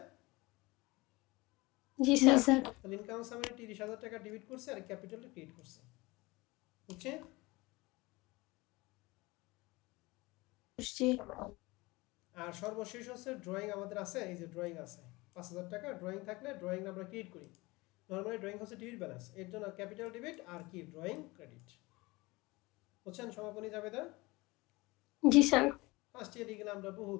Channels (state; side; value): quieter; right; 22.7 dB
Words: জি জি স্যার। স্যার। তাহলে ইনকাম সামারি 30,000 টাকা ডেবিট করছে আর ক্যাপিটালটা ক্রেডিট করছে, বুঝছে? বুঝছি। আর সর্বশেষ হচ্ছে ড্রয়িং আমাদের আছে, এই যে ড্রয়িং আছে 5,000 টাকা। ড্রয়িং থাকলে ড্রয়িং আমরা ক্রেডিট করি। নরমালি ড্রয়িং হচ্ছে ডেবিট ব্যালেন্স, এর জন্য ক্যাপিটাল ডেবিট আর কি ড্রয়িং ক্রেডিট, বুঝছেন? সমাপনী জাবেদা জি স্যার। ফার্স্ট ইয়ার এগুলো আমরা